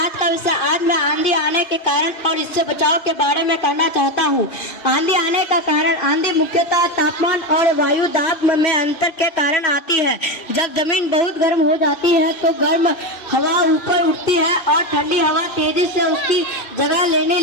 का विषय आज मैं आंधी आने के कारण और इससे बचाव के बारे में कहना चाहता हूँ। आंधी आने का कारण आंधी मुख्यतः तापमान और वायु दाब में अंतर के कारण आती है। जब जमीन बहुत गर्म हो जाती है तो गर्म हवा ऊपर उठती है और ठंडी हवा तेजी से उसकी जगह लेने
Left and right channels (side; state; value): right; late; 2.5 ms